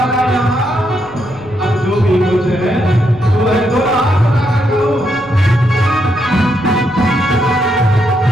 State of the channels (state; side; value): noise; left; rumble, 23 dB below the sound